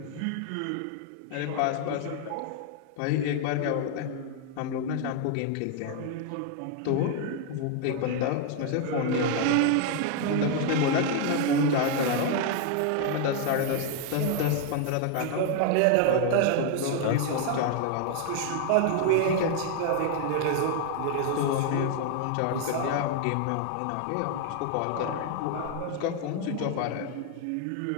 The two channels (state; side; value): different; both; correlation 0.00